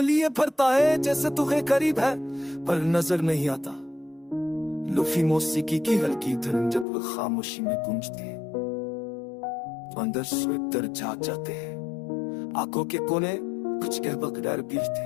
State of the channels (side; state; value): right; drops out; at 6.9 s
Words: लिए फरता है, जैसे तू है करीब है पर नजर नहीं आता। लुफी मौसीकी की हल्की धुन जब वो खामोशी में गूंजती है तो अंदर से दर्द जाग जाते हैं। आंखों के कोने कुछ कह बगैर